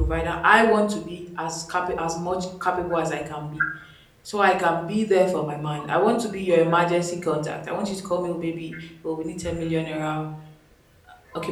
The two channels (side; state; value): both; identical; correlation 1.00